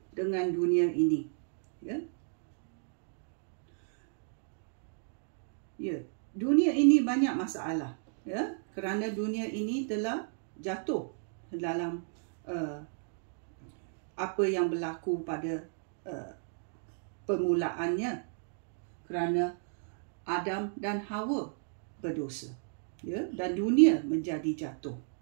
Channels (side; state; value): left; silent; digital silence